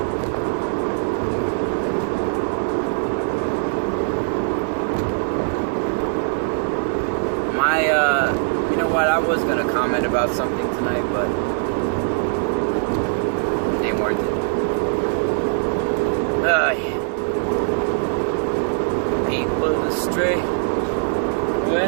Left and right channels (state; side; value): silent; left; 65 dB below the other